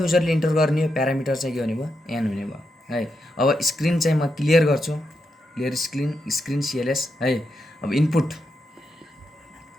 इन्टर गर्ने हो, प्यारामिटर चाहिँ के हुने भयो, एन हुने भयो है। अब स्क्रिन चाहिँ म क्लियर गर्छु, क्लियर स्क्रिन सिएलएस है। अब इनपुट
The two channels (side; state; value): both; normal; correlation 0.84